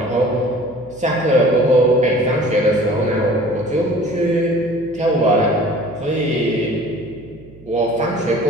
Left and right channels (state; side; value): noise; right; hum, 23 dB below the sound